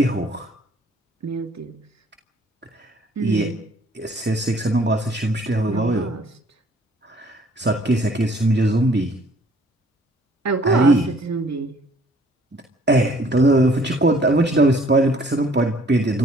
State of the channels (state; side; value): normal; both; correlation 0.59